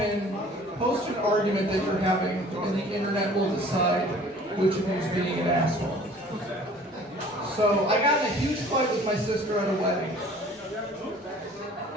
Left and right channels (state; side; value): normal; both; correlation 0.50